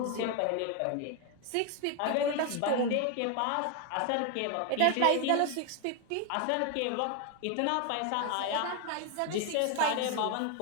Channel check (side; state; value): both; different; correlation 0.01